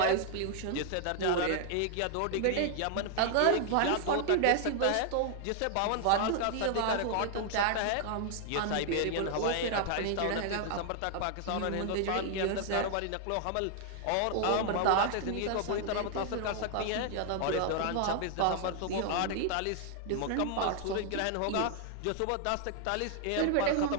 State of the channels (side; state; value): both; different; correlation 0.00